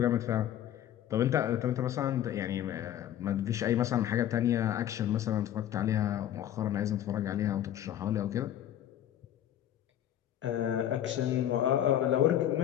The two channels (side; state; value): right; quieter; 11.4 dB